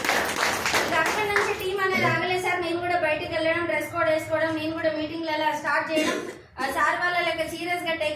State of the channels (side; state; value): both; identical; correlation 1.00